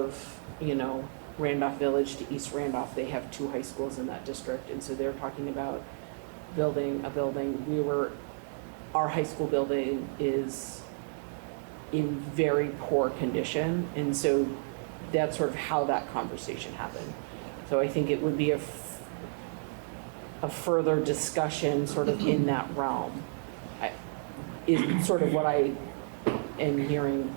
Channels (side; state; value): left; silent; 57 dB below the other